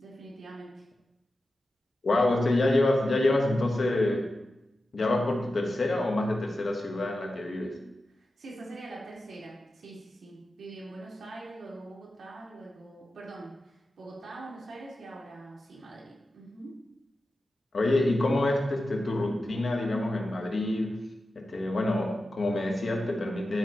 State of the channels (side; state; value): both; normal; correlation 0.92